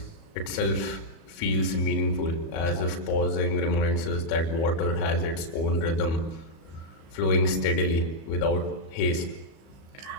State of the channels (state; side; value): late; right; 36 ms